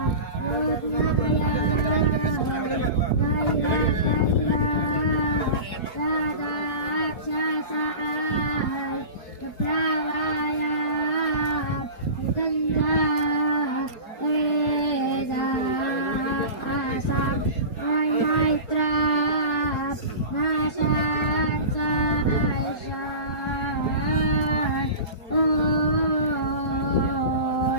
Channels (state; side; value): late; right; 4.3 ms